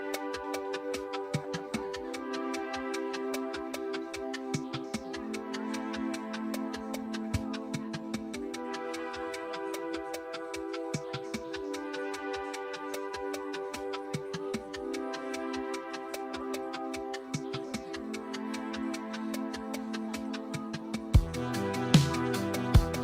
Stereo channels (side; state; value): both; identical; correlation 1.00